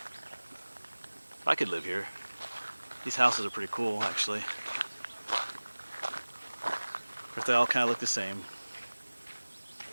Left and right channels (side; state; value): both; inverted; correlation -1.00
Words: I could live here. These houses are pretty cool, actually. Of course, they all kind of look the same.